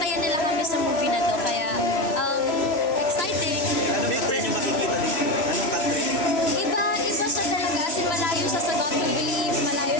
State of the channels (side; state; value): right; late; 3.0 ms